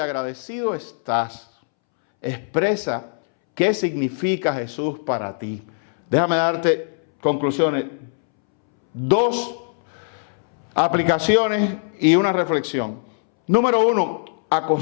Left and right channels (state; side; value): silent; right; 65 dB below the other